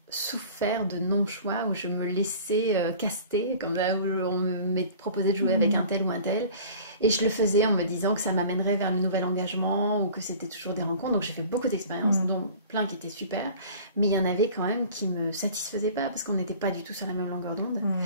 souffert de non-choix où je me laissais caster, comme là où on me proposait de jouer avec un tel ou un tel. Et je le faisais en me disant que ça m'amènerait vers le nouvel engagement ou que c'était toujours des rencontres. Donc j'ai fait beaucoup d'expériences, dont plein qui étaient super. Mais il y en avait quand même qui ne me satisfaisaient pas parce qu'on n'était pas du tout sur la même longueur d'onde.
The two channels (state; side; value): inverted; both; correlation -0.44